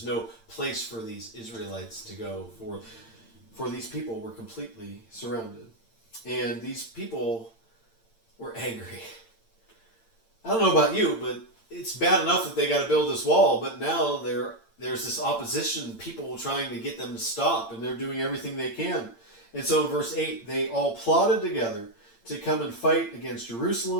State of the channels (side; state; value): right; late; 8.8 ms